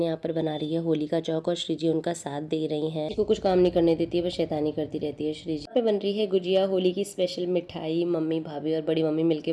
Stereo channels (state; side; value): identical; both; correlation 1.00